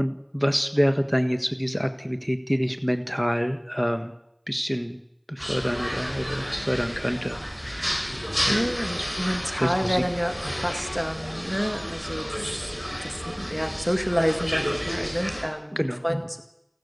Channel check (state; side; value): identical; both; correlation 1.00